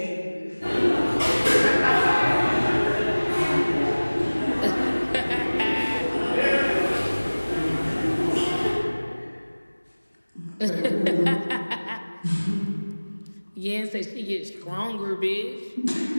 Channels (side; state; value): both; inverted; correlation -1.00